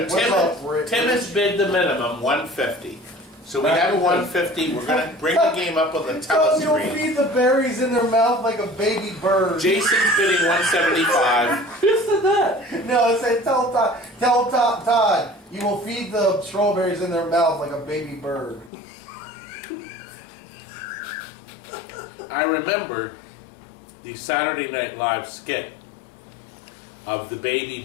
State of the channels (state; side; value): drops out; right; at 18.7 s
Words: What's up, Rick? Tim has bid the minimum, 150. So we have a 150. We're gonna bring the game up on the You'll telescreen. feed the berries in their mouth like a baby bird. Jason's bidding 175. No, it said tell Todd, you will feed the strawberries in their mouth like a baby bird. I remember the Saturday Night Live skit of the baby